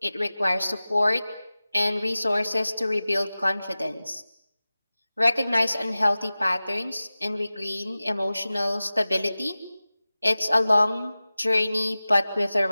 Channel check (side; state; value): both; inverted; correlation -0.97